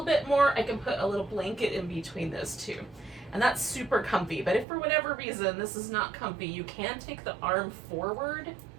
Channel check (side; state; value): left; drops out; at 4.7 s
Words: bit more, I can put a little blanket in between those two. And that's super comfy. But if for whatever reason this is not comfy, you can take the arm forward